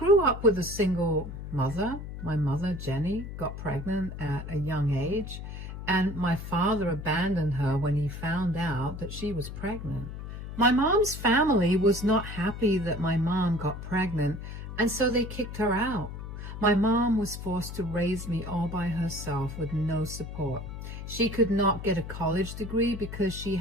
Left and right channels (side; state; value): left; noise; hum, 9 dB below the sound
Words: up with a single mother. My mother, Jenny, got pregnant at a young age, and my father abandoned her when he found out that she was pregnant. My mom's family was not happy that my mom got pregnant, and so they kicked her out. My mom was forced to raise me all by herself with no support. She could not get a college degree because she